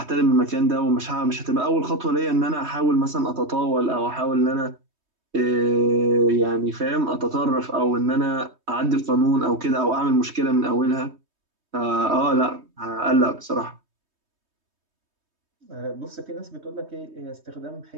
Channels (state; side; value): late; left; 3.2 ms